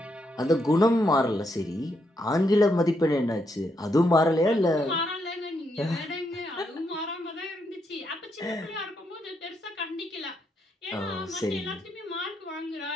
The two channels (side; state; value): both; normal; correlation 0.78